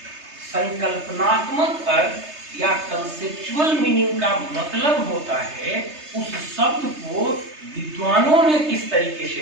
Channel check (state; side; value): late; left; 3.3 ms